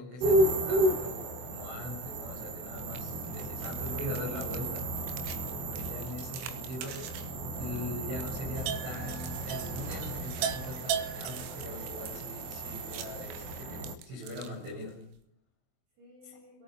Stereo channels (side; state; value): left; late; 24 ms